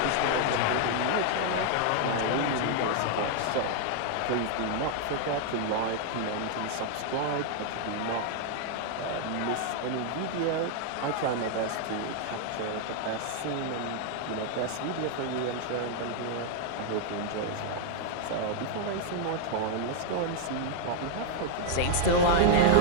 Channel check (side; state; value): both; different; correlation 0.00